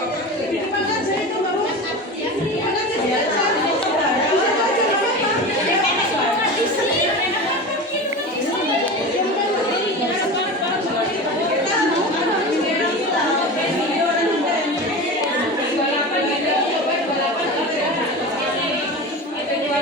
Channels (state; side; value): normal; both; correlation 0.29